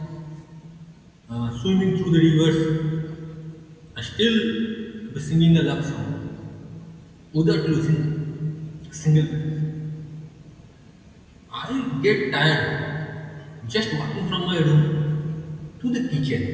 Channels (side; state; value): both; identical; correlation 1.00